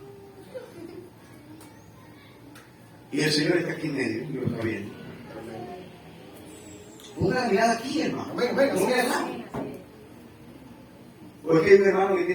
Y el Señor está aquí en medio, y lo está viendo. Ponga la mirada aquí, hermano. Amén, amén. No vea nada. Porque hay un hermano que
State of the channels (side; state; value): both; identical; correlation 1.00